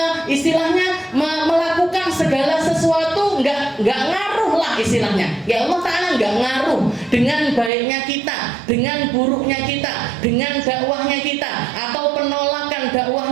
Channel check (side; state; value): left; drops out; at 7.7 s